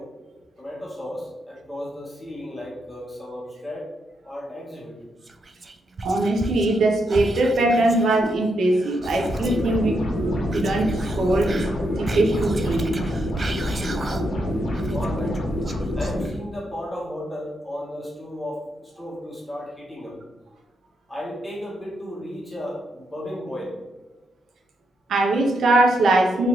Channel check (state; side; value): normal; both; correlation 0.80